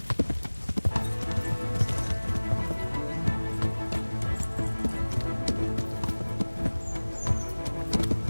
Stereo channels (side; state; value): both; inverted; correlation -1.00